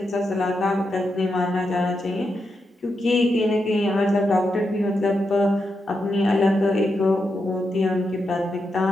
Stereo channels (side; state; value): both; normal; correlation 0.85